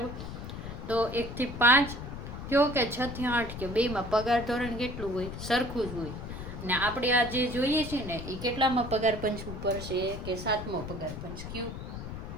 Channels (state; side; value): noise; left; rumble, 8 dB below the sound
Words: તો 1 થી 5 કયો કે 6 થી 8 કયો, બેમાં પગાર ધોરણ કેટલું હોય? સરખું જ હોય. ને આપણે આ જે જોઈએ છે ને એ કેટલામાં પગાર પંચ ઉપર છે કે 7મો પગાર પંચ? કયું?